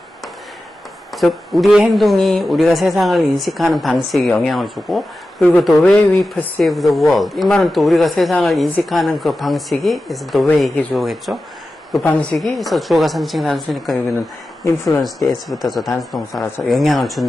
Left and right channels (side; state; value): both; normal; correlation 0.93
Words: 즉 우리의 행동이 우리가 세상을 인식하는 방식에 영향을 주고, 그리고 the way we perceive the world, 이 말은 또 우리가 세상을 인식하는 그 방식이 is the way 이게 주어겠죠. 그 방식이 그래서 주어가 3층 단수니까 여기는 influence s 붙어서 단수 동사라서 영향을